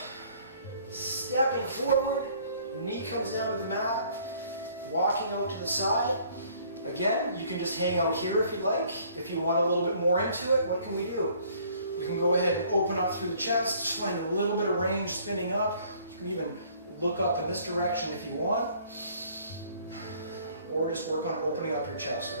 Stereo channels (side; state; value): both; inverted; correlation -0.58